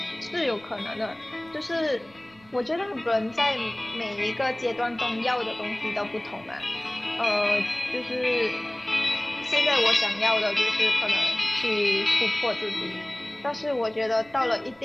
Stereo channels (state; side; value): noise; right; rumble, 29 dB below the sound